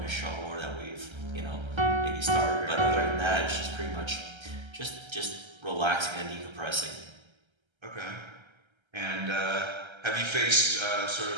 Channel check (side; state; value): left; late; 1.3 ms